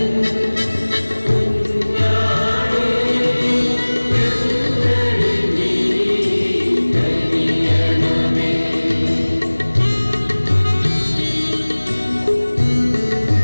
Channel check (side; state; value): both; inverted; correlation -1.00